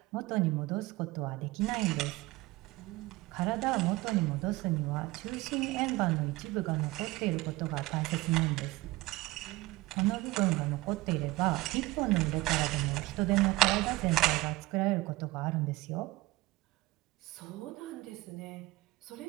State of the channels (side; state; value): left; quieter; 19.9 dB